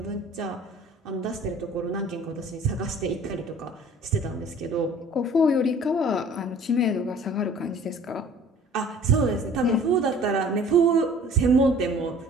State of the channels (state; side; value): normal; both; correlation 0.49